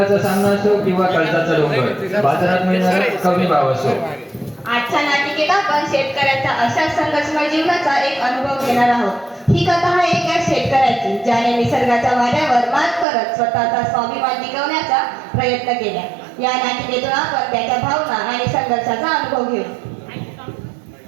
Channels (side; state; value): left; drops out; at 13.1 s